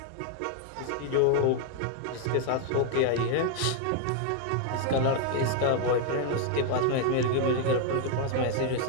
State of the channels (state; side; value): different; both; correlation 0.00